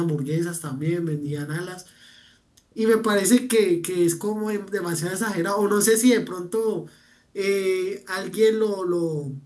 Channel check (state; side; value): identical; both; correlation 1.00